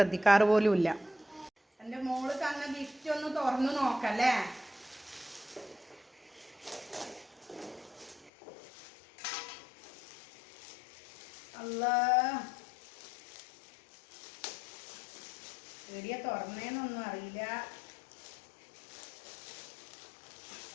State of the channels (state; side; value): drops out; right; at 8.3 s